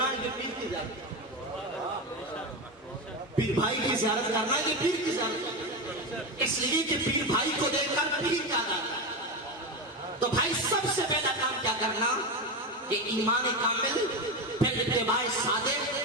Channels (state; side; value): normal; both; correlation 0.17